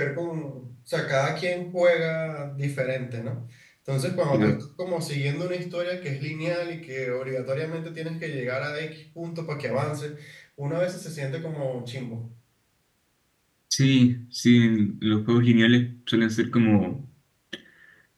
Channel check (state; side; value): identical; both; correlation 1.00